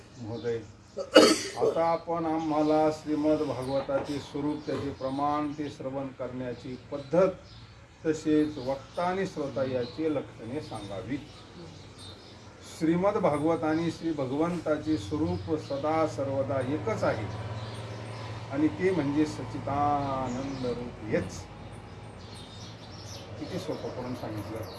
महोदय, आता आपण आम्हाला श्रीमद भागवताचे स्वरूप, त्याचे प्रमाण, ते श्रवण करण्याची पद्धत, तसेच वक्ता आणि श्रोता याची लक्षणे सांगावी. श्रीमद भागवत आणि श्री भगवंताचे स्वरूप सदा सर्वदा एकच आहे आणि ते म्हणजे सच्चिदानंद रूप हेच. किती सोपं करून सांगितलं.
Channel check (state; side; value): identical; both; correlation 1.00